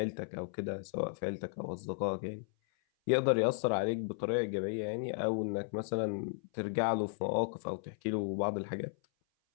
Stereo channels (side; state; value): right; silent; 54 dB below the other